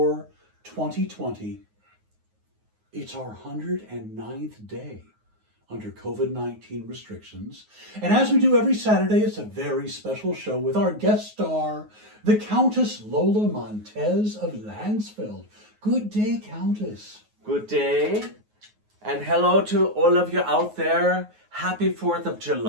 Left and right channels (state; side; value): late; left; 9.5 ms